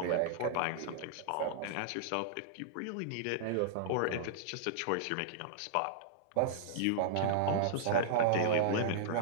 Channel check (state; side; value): different; both; correlation -0.01